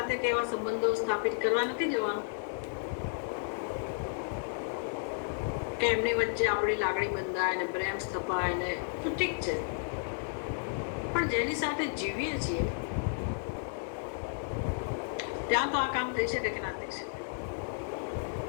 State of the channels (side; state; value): right; silent; digital silence